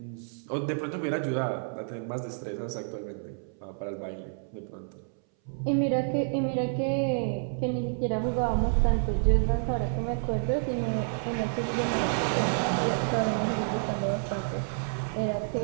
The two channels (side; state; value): left; silent; 58 dB below the other